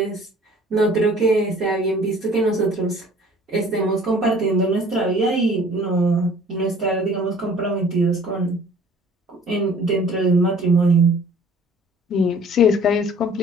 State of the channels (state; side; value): normal; both; correlation 0.51